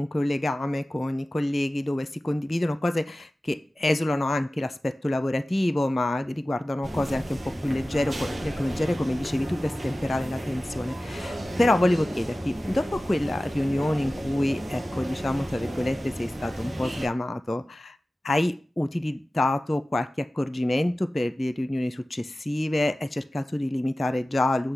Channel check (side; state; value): both; normal; correlation 0.96